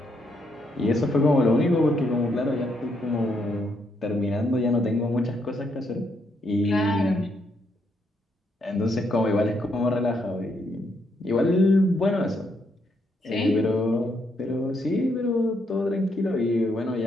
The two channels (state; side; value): normal; both; correlation 0.76